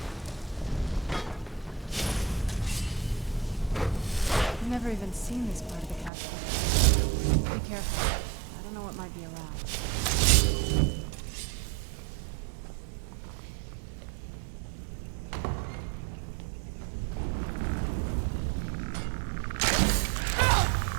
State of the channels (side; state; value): left; drops out; at 6.1 s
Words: I've never even seen this part of the castle. Be careful. I don't know what might be around.